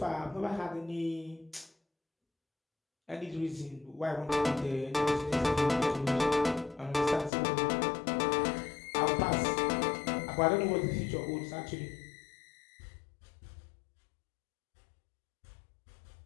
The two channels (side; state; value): right; drops out; at 7.3 s